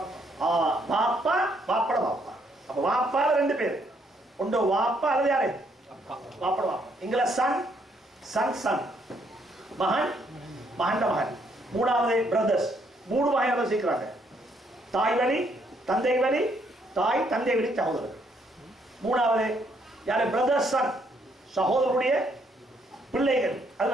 வாப்பா வாப்பட வாப்பா. அப்ப வாப்பால 2 பேர். ஒன்று வாப்பா அல்லது யாரு? வாப்பட வாப்பா. இங்கில சன் சன் சன், மகன் மகன் மகன். மூணாவது பிரதர்ஸ். 3 வகையாக சேர்க்கிறாங்க. தாய் வழி தந்தை வழி, தாய் தந்தை வழி சகோதரர். மூணாவது யாரு? பிரதர்ஸ் சன், சகோதரருடைய பிள்ளைகள்.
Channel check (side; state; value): both; normal; correlation 0.71